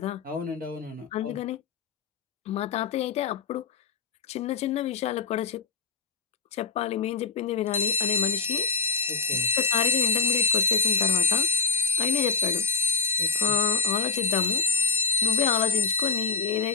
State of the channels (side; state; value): right; quieter; 5.0 dB